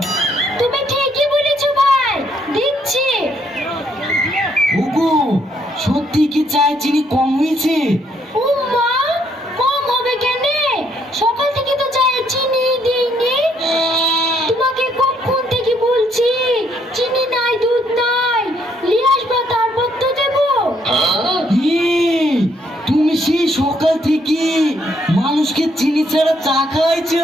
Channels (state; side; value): normal; both; correlation 0.71